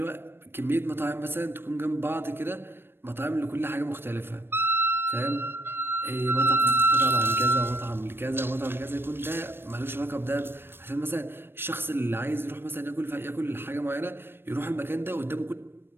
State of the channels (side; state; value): left; late; 0.10 ms